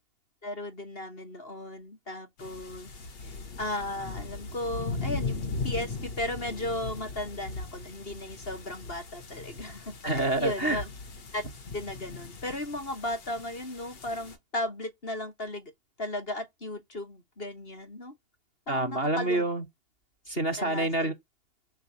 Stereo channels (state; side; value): late; right; 2.8 ms